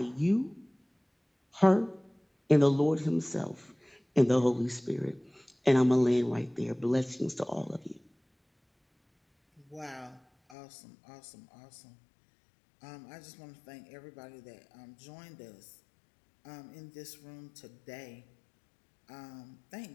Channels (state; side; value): drops out; right; at 10.6 s